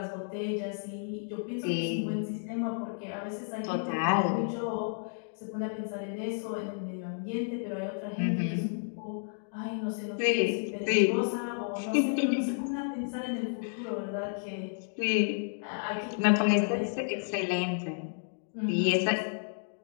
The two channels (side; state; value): right; silent; digital silence